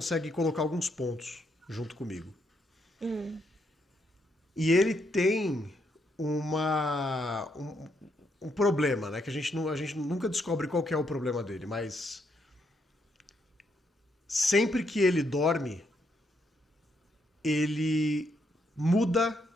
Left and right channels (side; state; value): both; normal; correlation 0.76